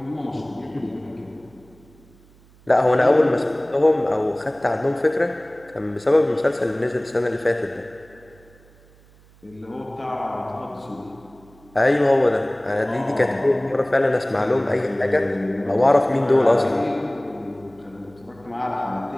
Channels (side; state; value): right; noise; hum, 28 dB below the sound